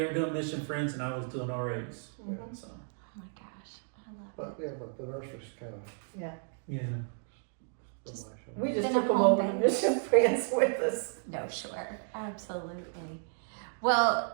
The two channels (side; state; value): left; silent; 56 dB below the other